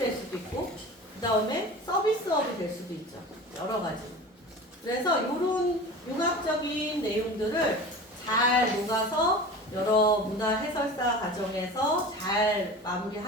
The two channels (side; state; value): both; normal; correlation 0.35